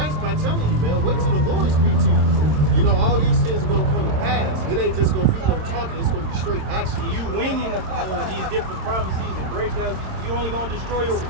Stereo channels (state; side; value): late; left; 26 ms